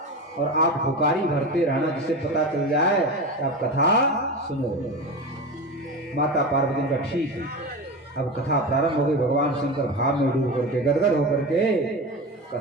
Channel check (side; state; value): both; normal; correlation 0.25